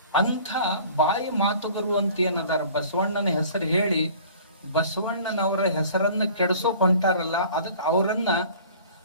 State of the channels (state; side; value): inverted; both; correlation -0.48